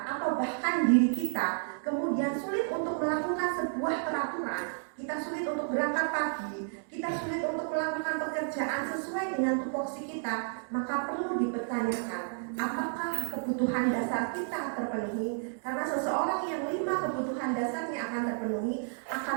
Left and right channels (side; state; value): left; silent; digital silence